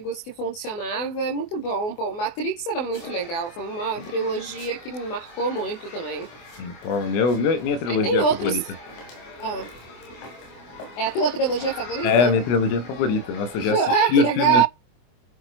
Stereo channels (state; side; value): late; right; 24 ms